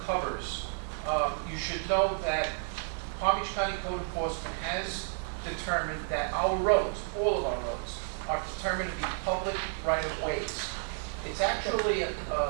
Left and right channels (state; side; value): silent; left; digital silence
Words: covers, you should know that Palm Beach County Code Enforcement has determined that our roads, all of our roads, are determined to be public right-of-ways. It's actually a